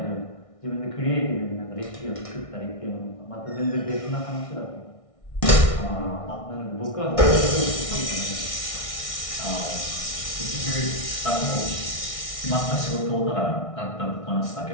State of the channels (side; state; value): right; late; 1.6 ms